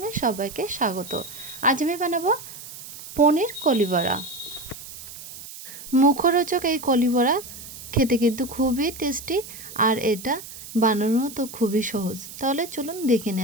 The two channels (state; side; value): noise; right; hiss, 14 dB below the sound